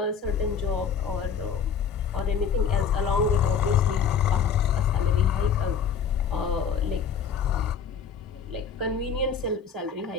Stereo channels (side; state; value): right; quieter; 6.7 dB